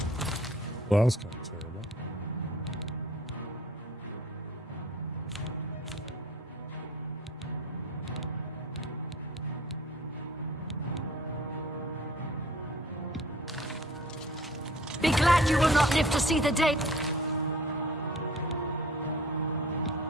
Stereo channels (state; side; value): normal; both; correlation 0.49